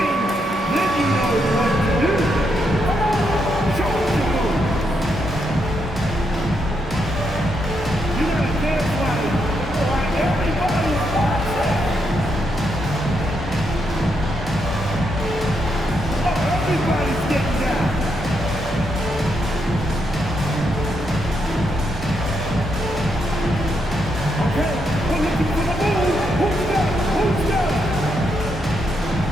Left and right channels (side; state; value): both; normal; correlation 0.80